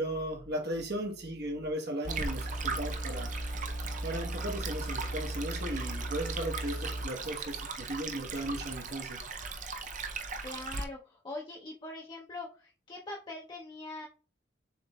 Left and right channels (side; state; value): both; normal; correlation 0.47